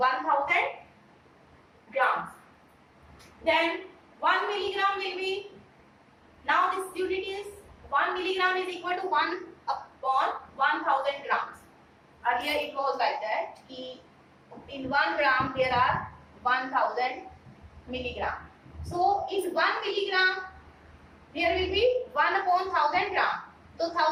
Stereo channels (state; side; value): identical; both; correlation 1.00